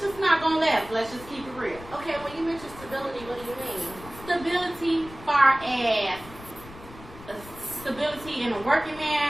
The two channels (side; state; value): left; noise; rumble, 17 dB below the sound